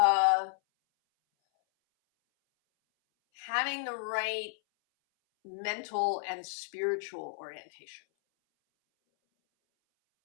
having the right mental and spiritual orientation.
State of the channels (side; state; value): right; silent; 56 dB below the other